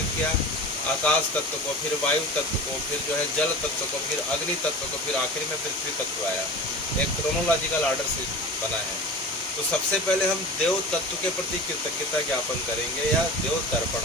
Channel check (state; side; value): normal; both; correlation 0.34